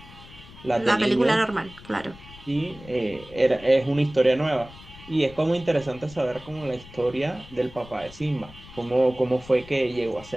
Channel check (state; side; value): noise; left; rumble, 19 dB below the sound